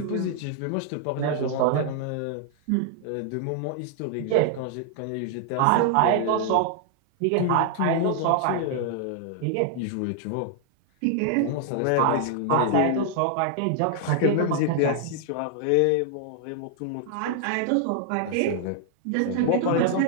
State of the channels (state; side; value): different; both; correlation -0.01